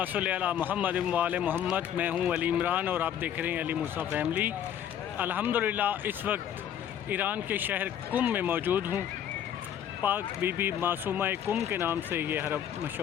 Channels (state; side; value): quieter; right; 9.8 dB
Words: सल्ली अला मुहम्मद व आले मोहम्मद। मैं हूँ अली इमरान और आप देख रहे हैं अली मूसा फैमिली। अल्हम्दुलिल्लाह इस वक्त ईरान के शहर कुम में मौजूद हूँ। पाक बीबी मासूमा कुम के नाम से ये हरम